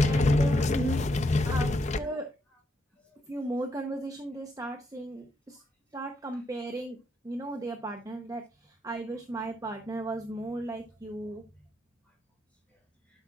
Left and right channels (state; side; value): normal; both; correlation 0.78